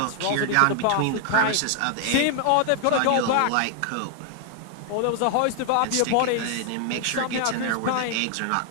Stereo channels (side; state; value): both; different; correlation 0.00